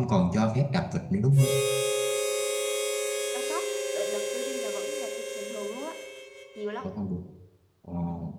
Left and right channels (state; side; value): identical; both; correlation 1.00